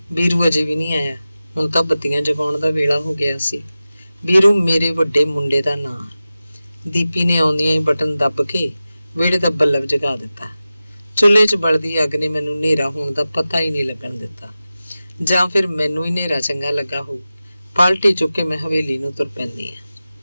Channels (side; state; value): both; inverted; correlation -0.95